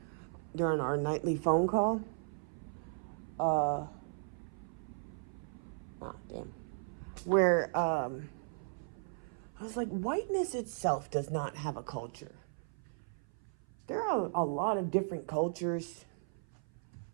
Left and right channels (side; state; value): left; silent; 53 dB below the other